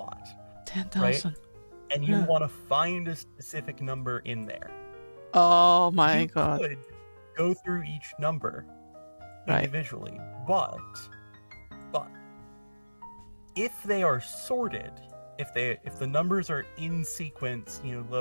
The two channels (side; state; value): both; inverted; correlation -1.00